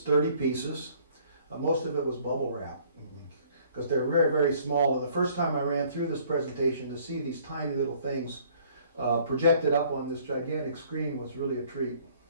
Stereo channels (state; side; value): inverted; both; correlation -0.58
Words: 30 pieces. Most of it was bubble wrap because they're very, very small. And the first time I ran through this presentation to see these tiny little things projected up on this gigantic screen was really a treat.